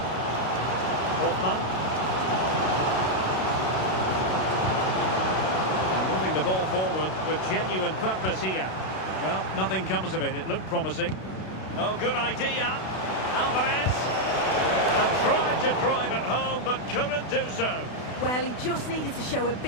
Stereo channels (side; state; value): right; late; 32 ms